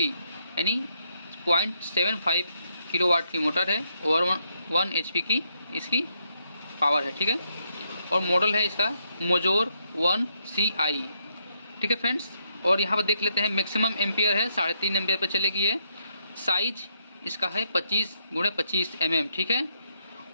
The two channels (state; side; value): inverted; both; correlation -0.77